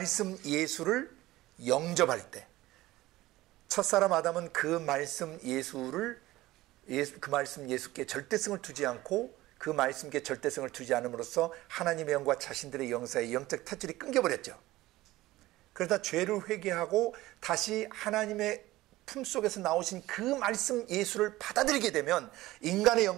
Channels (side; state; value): left; quieter; 17.4 dB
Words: 예수를 영접할 때. 첫사람 아담은 그 말씀 예수께 절대성을 두지 않고 그 말씀께 절대성을 두지 않음으로써 하나님의 영과 자신들의 영 사이의 영적 탯줄이 끊겨버렸죠. 그러다 죄를 회개하고 다시 하나님의 품속에서 나오신 그 말씀 예수를 받아들이게 되면 인간의